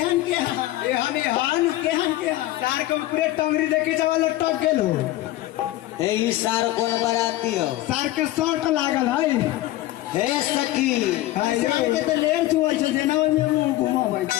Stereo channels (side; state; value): right; quieter; 16.1 dB